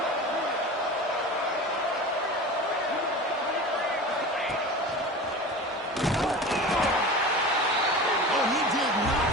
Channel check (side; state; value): both; normal; correlation 0.33